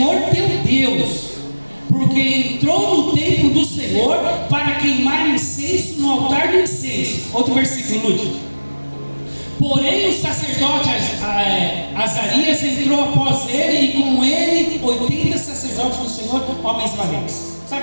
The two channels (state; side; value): inverted; both; correlation -1.00